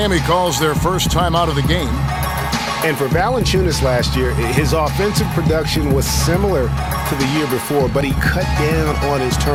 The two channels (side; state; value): both; identical; correlation 1.00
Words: calls their first time out of the game. And for Valanciunas last year, his offensive production was similar to the year before, but he cut down on his